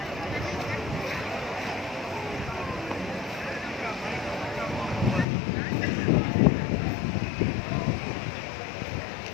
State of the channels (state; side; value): drops out; right; at 5.2 s